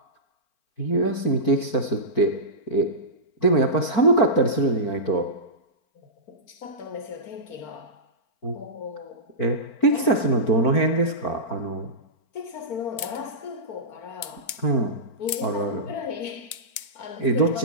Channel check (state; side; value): late; right; 4.4 ms